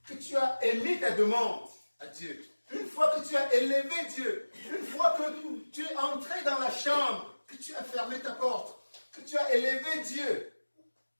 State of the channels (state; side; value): inverted; both; correlation -1.00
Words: que tu as émis ta demande à Dieu, une fois que tu as élevé Dieu, une fois que tu es entré dans la chambre, que tu as fermé ta porte, que tu as élevé Dieu